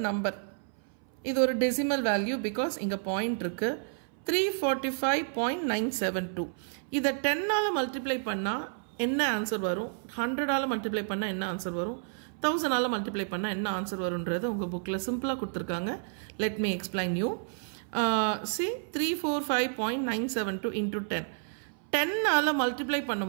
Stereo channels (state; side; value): silent; left; 58 dB below the other